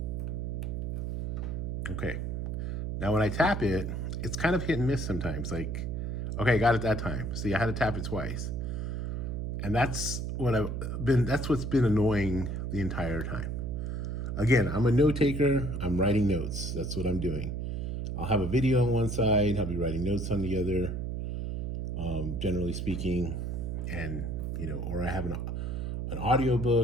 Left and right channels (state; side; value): noise; right; hum, 2 dB below the sound